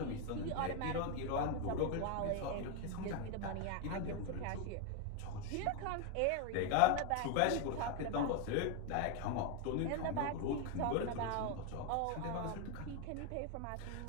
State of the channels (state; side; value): different; both; correlation 0.01